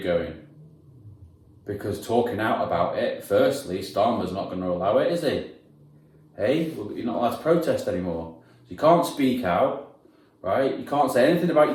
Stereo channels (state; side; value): identical; both; correlation 1.00